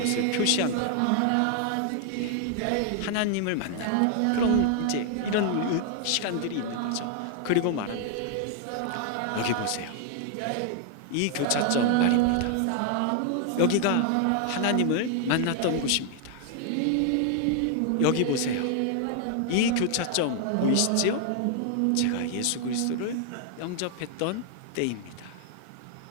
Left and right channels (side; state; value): both; different; correlation 0.00